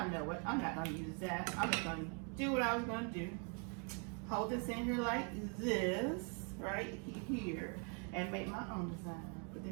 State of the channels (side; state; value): left; quieter; 38.9 dB